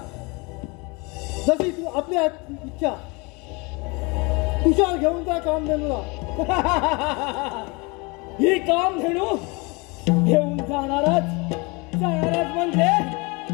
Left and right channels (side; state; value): right; quieter; 27.9 dB